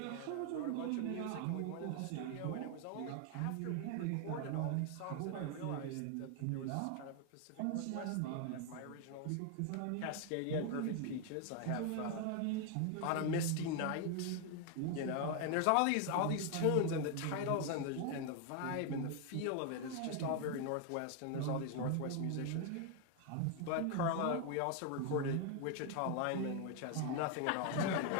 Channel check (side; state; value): both; different; correlation 0.00